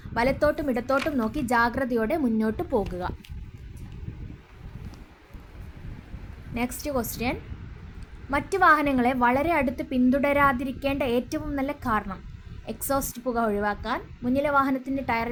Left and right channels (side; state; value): both; identical; correlation 1.00